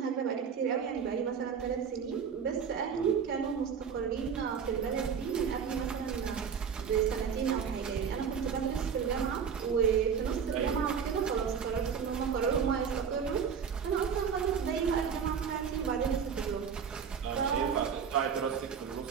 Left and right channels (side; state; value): left; quieter; 6.9 dB